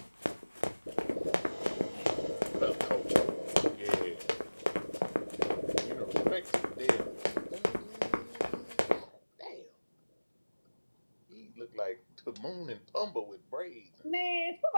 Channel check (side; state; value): both; inverted; correlation -1.00